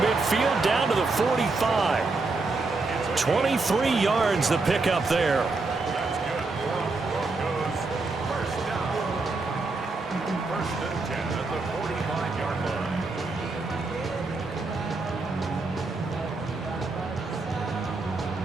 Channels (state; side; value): quieter; left; 3.7 dB